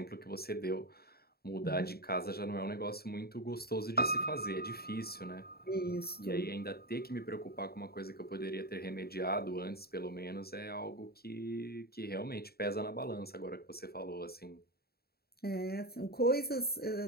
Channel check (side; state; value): right; late; 0.45 ms